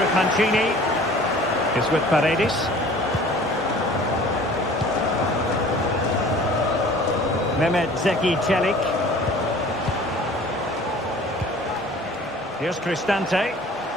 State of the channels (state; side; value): normal; both; correlation 0.47